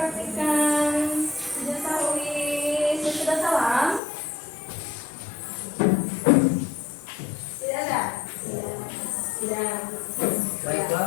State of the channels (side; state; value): right; drops out; at 4.0 s